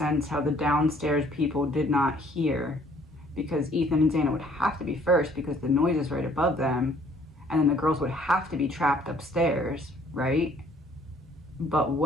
how the downstairs people did not hear, because Ethan and Xana would have to be first because the noise is right above them, and then the girls would have to be trapped upstairs, right? But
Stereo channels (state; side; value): normal; both; correlation 0.60